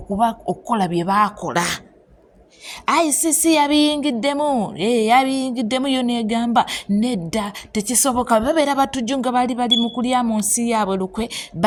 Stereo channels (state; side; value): identical; both; correlation 1.00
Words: bye baakola. ICC yabiyingiddemu yo negamba nedda tekisoboka. Babeera batujju nga bali mu kulya mu nsi yaabwe lukwe,